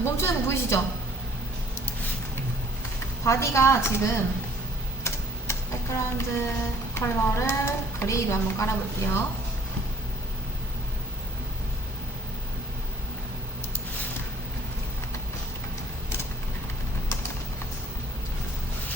멈추는 거 보이시죠? 바디가 지금 백그라운드 컬러를 그레이로 한번 깔아볼게요.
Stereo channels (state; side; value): normal; both; correlation 0.58